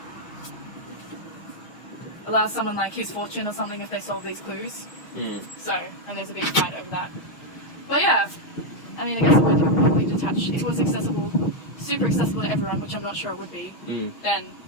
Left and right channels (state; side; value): late; right; 6.3 ms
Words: someone like his fortune or something if they solve these clues. Mm. So, and there's a big fight over that. But yeah, I mean, I guess it would probably detach. If it was accessible, super accessible to everyone, which I'm not sure it would be, then